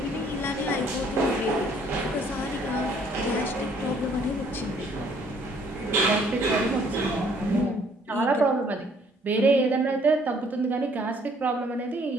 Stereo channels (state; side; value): normal; both; correlation 0.62